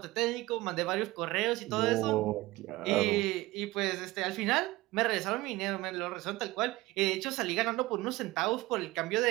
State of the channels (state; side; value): quieter; left; 19.7 dB